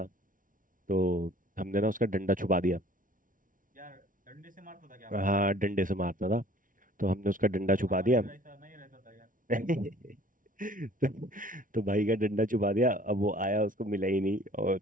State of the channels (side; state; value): left; late; 0.39 ms